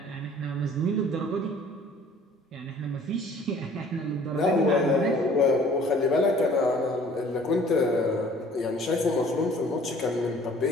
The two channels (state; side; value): normal; both; correlation 0.53